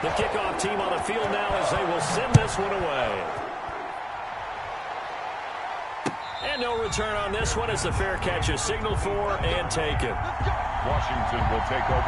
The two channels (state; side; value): identical; both; correlation 1.00